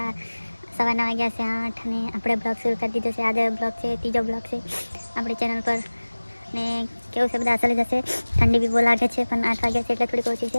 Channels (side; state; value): both; inverted; correlation -1.00